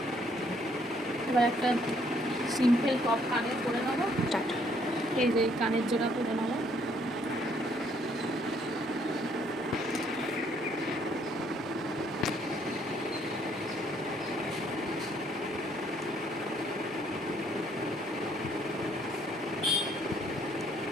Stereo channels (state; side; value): normal; both; correlation 0.66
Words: এবার একটা সিম্পল টপ কানের করে নেবো। এই যে কানের জোড়া করে নেবো।